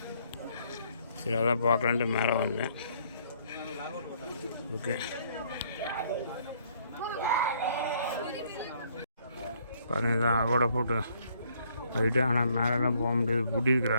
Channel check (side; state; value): both; inverted; correlation -0.66